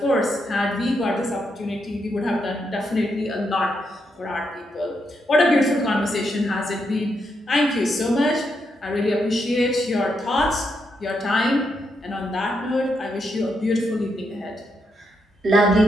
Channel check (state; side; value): normal; both; correlation 0.80